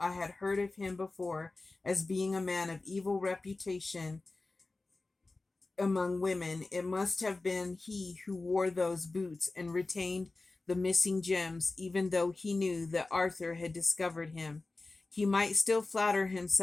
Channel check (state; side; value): quieter; right; 3.4 dB